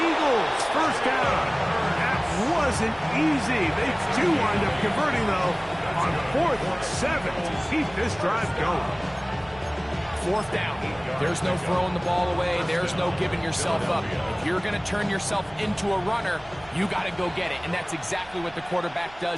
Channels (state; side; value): noise; right; rumble, 23 dB below the sound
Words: Eagles 1st down. That wasn't easy. They do wind up converting, though, on 4th and 7 to keep this drive going. 4th down. There's no throwing the ball away. There's no giving yourself up. If you're going to turn yourself into a runner, you got to go get it. And that's exactly what the quarterback